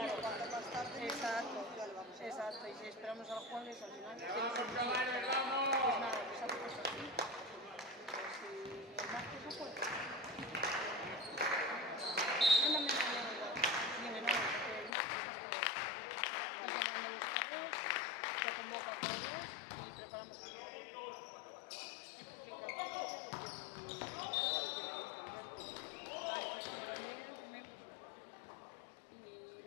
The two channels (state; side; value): drops out; right; at 14.9 s